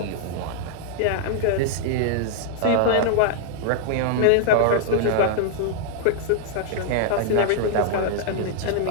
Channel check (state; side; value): different; both; correlation -0.01